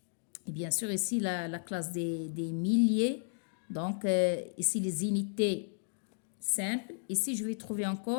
bien sûr ici la classe des milliers. Donc, ici les unités simples. Ici, je vais trouver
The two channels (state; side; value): silent; right; digital silence